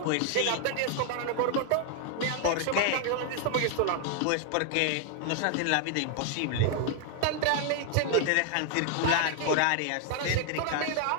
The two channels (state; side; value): different; both; correlation 0.00